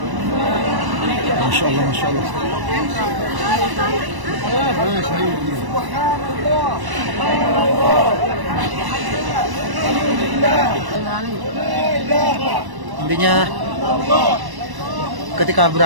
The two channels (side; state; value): left; late; 1.0 ms